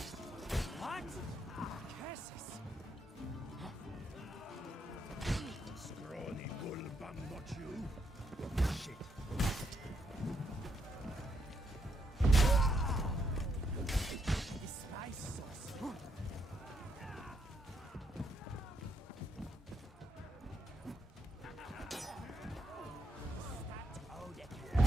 What? Jesus! Scrawny bull bum, not you. Shit. The spice sauce.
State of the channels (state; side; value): normal; both; correlation 0.77